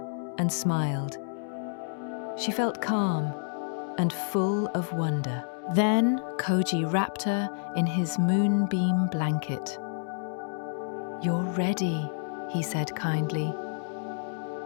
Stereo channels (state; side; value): silent; right; digital silence